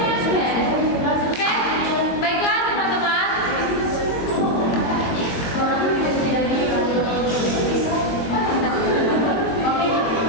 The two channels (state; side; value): late; right; 22 ms